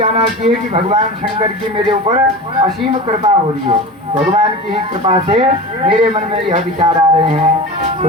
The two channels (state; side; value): normal; both; correlation 0.30